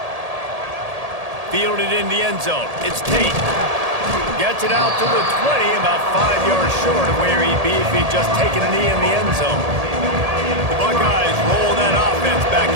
Fielded in the end zone. It's Tate. Gets it out to the 20, about 5 yards short of where he'd be if he'd just taken a knee in the end zone. The Buckeyes roll that offense back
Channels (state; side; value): late; left; 1.8 ms